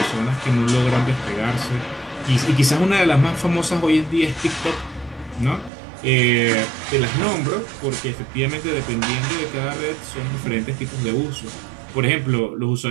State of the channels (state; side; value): drops out; left; at 5.7 s